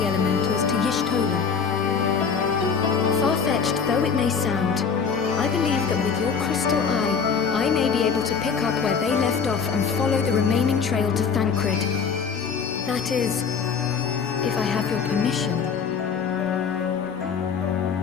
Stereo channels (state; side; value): quieter; right; 6.1 dB